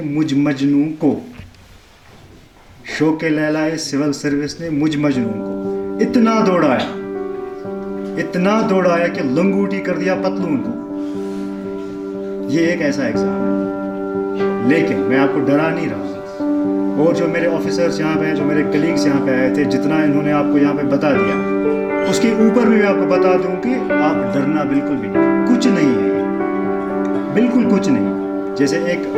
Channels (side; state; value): both; identical; correlation 1.00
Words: मुझ मजनू को, शौक़े लैलाए सिविल सर्विस ने मुझ मजनू को इतना दौड़ाया कि लंगूटी कर दिया पतलून को. ये एक ऐसा एग्जाम है, लेकिन मैं आपको डरा नहीं रहा. और जो मेरे ऑफिसर्स यहाँ पे हैं, जो मेरे कलीग्स यहाँ पे आए थे, जितना इन्होंने आपको यहाँ पे बता दिया, उसके ऊपर भी मैं आपको बता दूं कि आप डरना बिल्कुल भी नहीं, कुछ नहीं है, बिल्कुल कुछ नहीं. जैसे एक